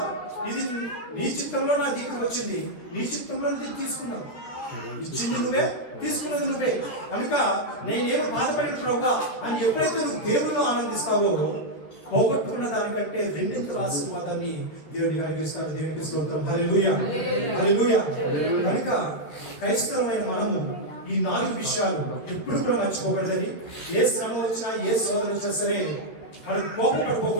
ఇది నీ చిత్తంలో నా దగ్గరకు వచ్చింది, నీ చిత్తంలో తీసుకున్నావు, ఇచ్చింది నువ్వే, తీసుకున్నది నువ్వే కనుక నేనేమో బాధపడిన ప్రభువా అని ఎప్పుడైతే నువ్వు దేవుళ్ళు ఆనందిస్తావో పోగొట్టుకున్న దానికంటే రెండింతల ఆశీర్వాదాన్ని దేవుడికి కలిగిస్తాడు. దేవునికి స్తోత్రం. హల్లెలూయా, హల్లెలూయా. కనుక క్రైస్తవమైన మనము ఈ 4 విషయాలు ఎప్పుడు కూడా మర్చిపోకూడదని, ఏ శ్రమ వచ్చినా ఏ శోధన వచ్చినా సరే మనం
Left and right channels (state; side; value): late; right; 13 ms